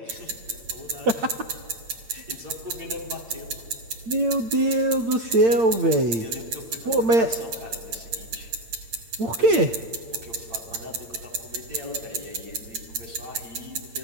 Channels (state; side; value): late; left; 8.8 ms